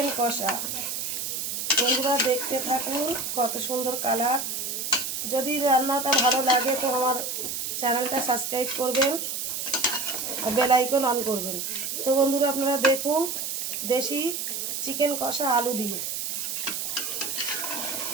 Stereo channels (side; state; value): right; noise; hiss, 3 dB below the sound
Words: কষা। বন্ধুরা দেখতে থাকুন কত সুন্দর কালার। যদি রান্নাটা ভালো লাগে তো আমার চ্যানেলটা সাবস্ক্রাইব করবেন আর বেল আইকন অন করবেন। তো বন্ধুরা আপনারা দেখুন দেশি চিকেন কষা আলু দিয়ে।